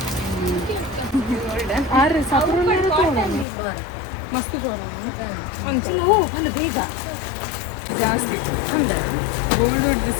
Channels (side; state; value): right; drops out; at 3.5 s